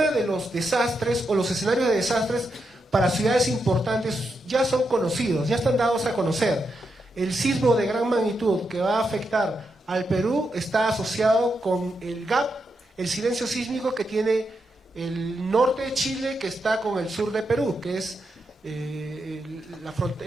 de los desastres o los escenarios de desastres para ciudades importantes ya son conocidos, ya están dados a conocer. El sismo de gran magnitud que va a afectar al Perú está asociado con el gap, el silencio sísmico que tiene el norte de Chile, que está con el sur de Perú, que es la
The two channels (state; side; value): normal; both; correlation 0.84